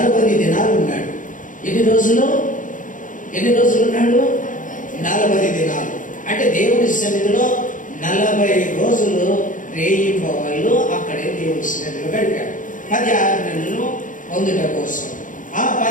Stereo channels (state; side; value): late; right; 0.38 ms